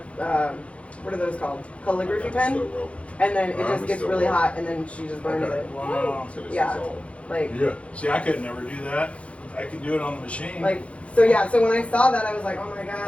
what are those called? Calligraphy pen. And then it just gets really hot, and then she just burns it. Wow. Yeah. Like, Yeah. See, I could never do that. I could do it on the machine. so yeah. So when I saw that, I was like, oh my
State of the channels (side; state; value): right; late; 0.062 ms